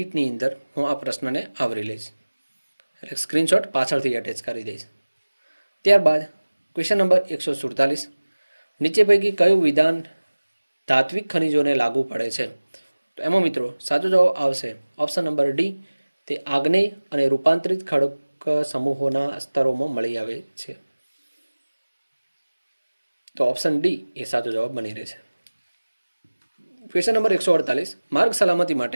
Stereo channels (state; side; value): inverted; both; correlation -1.00